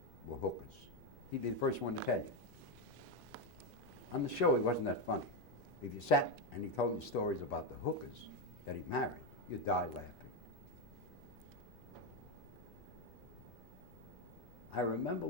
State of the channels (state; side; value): noise; left; rumble, 22 dB below the sound